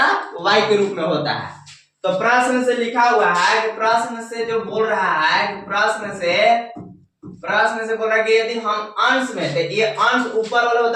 के रूप में होता है। तो प्रश्न से लिखा हुआ है कि प्रश्न से जो बोल रहा है कि प्रश्न से बोल रहा है कि यदि हम अंश में से, ये अंश ऊपर वाला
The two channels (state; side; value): identical; both; correlation 1.00